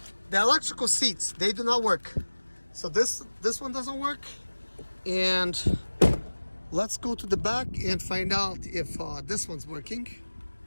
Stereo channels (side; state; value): both; inverted; correlation -1.00